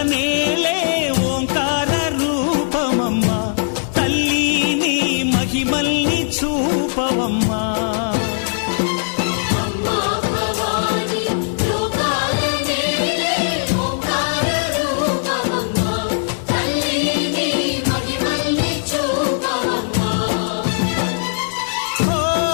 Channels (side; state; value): right; silent; digital silence